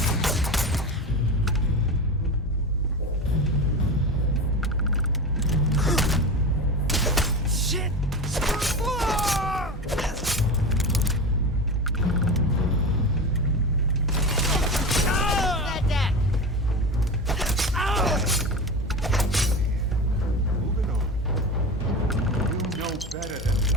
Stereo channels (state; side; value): normal; both; correlation 0.26